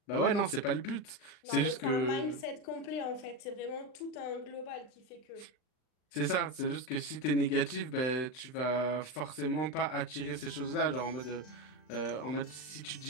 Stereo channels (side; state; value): right; late; 39 ms